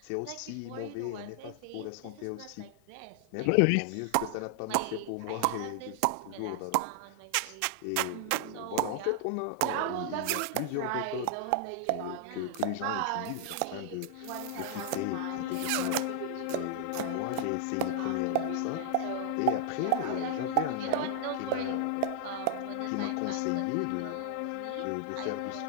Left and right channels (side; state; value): both; different; correlation -0.01